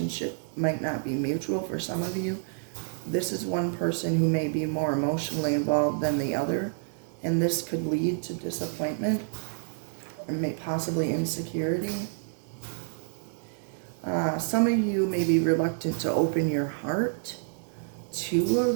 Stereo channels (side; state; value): left; silent; digital silence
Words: might not be mutual for some of you. This is one person who may be more emotionally involved than the other, and this could lead to disappointment and may possibly insecurity. Some of you may be reluctant to open your heart to